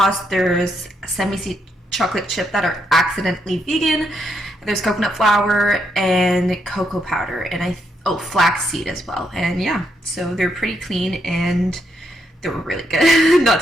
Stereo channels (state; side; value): normal; both; correlation 0.78